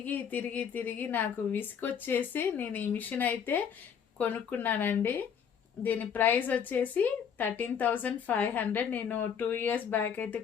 తిరిగి తిరిగి నాకు విసుకొచ్చేసి నేను ఈ మిషన్ అయితే కొనుక్కున్నానండి. దీని ప్రైస్ వచ్చేసి 13,500. నేను 2 years బ్యాక్ అయితే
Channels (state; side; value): quieter; right; 7.6 dB